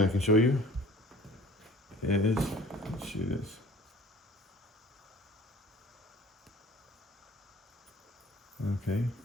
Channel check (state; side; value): normal; both; correlation 0.48